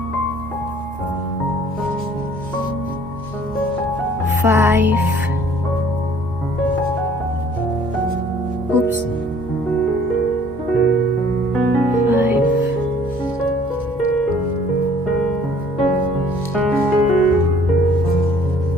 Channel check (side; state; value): both; normal; correlation 0.56